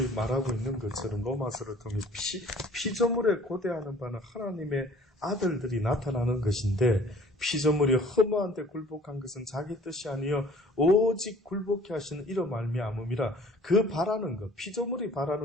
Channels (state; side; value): normal; both; correlation 0.52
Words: 말하고 있는 것처럼 로마서를 통해 피조물에 고대하는 바는 하나님의 아들들이 나타나는 것인데 피조물이 허무한데 굴복한 것은 자기 뜻이 아니요 오직 굴복케 하시는 이로 말미암음이라. 그 바라는 것, 피조물이